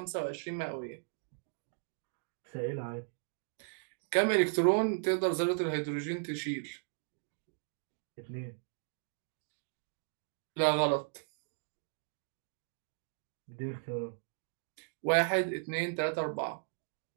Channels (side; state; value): left; silent; digital silence